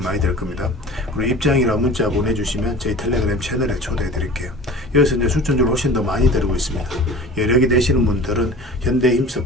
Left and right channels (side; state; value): both; normal; correlation 0.40